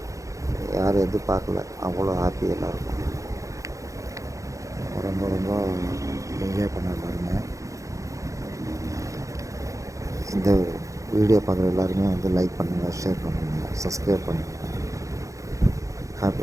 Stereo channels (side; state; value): left; late; 0.15 ms